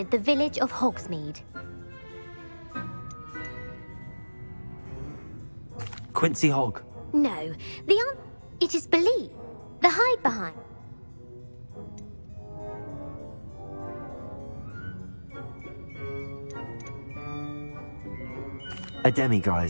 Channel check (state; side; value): inverted; both; correlation -1.00